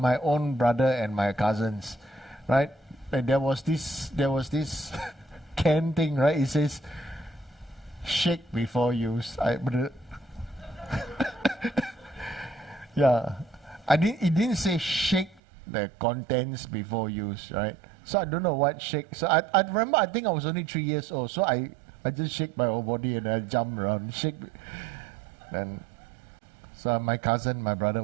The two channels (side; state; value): left; drops out; at 15.4 s